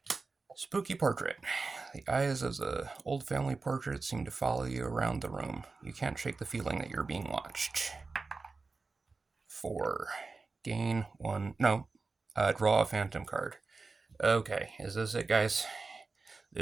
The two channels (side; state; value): left; quieter; 4.0 dB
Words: Spooky portrait. The eyes of the old family portrait seem to follow you around the room. You can't shake the feeling that you're being watched. 4. Gain 1. No. Draw a Phantom card. Okay, is this it, guys?